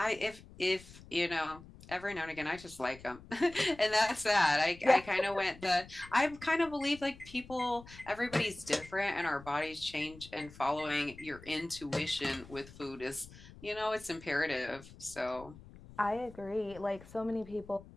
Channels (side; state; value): left; noise; rumble, 19 dB below the sound